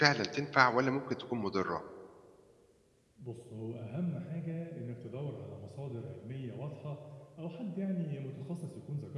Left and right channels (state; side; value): identical; both; correlation 1.00